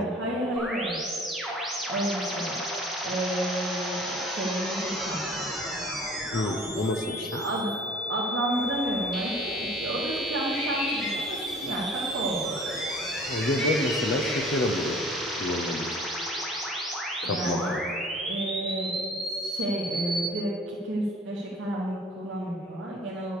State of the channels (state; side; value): normal; both; correlation 0.49